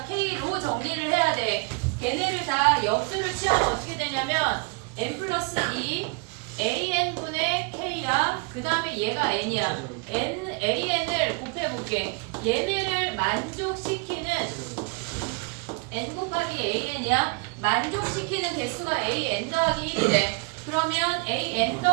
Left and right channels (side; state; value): left; quieter; 32.0 dB